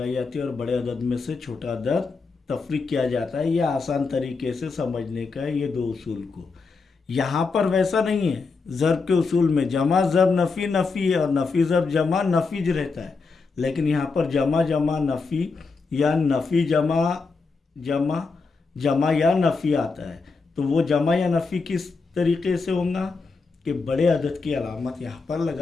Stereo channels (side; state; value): right; quieter; 4.4 dB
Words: जाती है और बड़े अदद में से छोटा अदद तफरीक किया जाता है। यह आसान तरीके से समझने का है ये दो उसूल को। यहाँ पर वैसा नहीं है, ज़र्ब के उसूल में जमा ज़र्ब नफ़ी नफ़ी है और नफ़ी ज़र्ब जमा नफ़ीज रहता है, लेकिन यहाँ पर जमा जमा नफ़ी या नफ़ी जमा जमा जमा या नफ़ी आता है। तो वो जमा या नफ़ी किस तरीके से होगा कि बड़े अदद की अलामत यहाँ पर